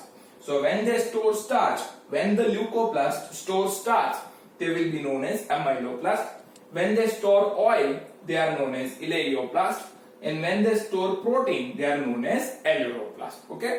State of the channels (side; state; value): both; identical; correlation 1.00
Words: So when they store starch, when the leucoplast stores starch, they will be known as amyloplast. When they store oil, they are known as eleoplast, and when they store protein, they are known as aleuroplast.